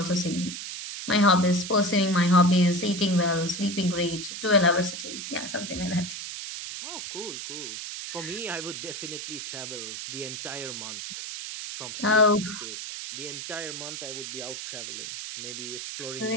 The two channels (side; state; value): right; noise; hiss, 7 dB below the sound